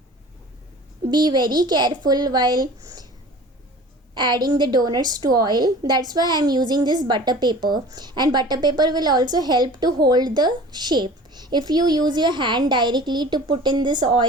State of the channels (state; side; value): normal; both; correlation 0.42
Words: Be very careful while adding the donuts to oil. That's why I'm using this butter paper, and butter paper will also help to hold the shape. If you use your hand directly to put in this